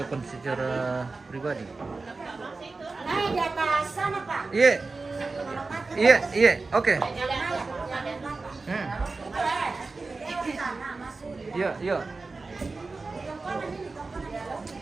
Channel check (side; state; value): left; quieter; 3.8 dB